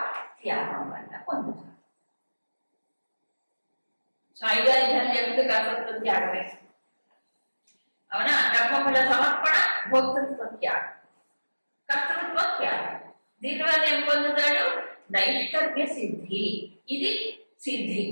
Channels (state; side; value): inverted; both; correlation -1.00